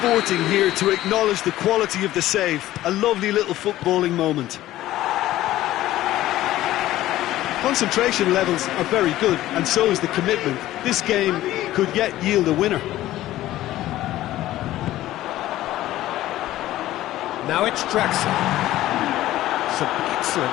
here to acknowledge the quality of the save. A lovely little footballing moment. Concentration levels are very good, and so is the commitment. This game could yet yield a winner. Now it's Draxler. Some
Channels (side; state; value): right; quieter; 14.9 dB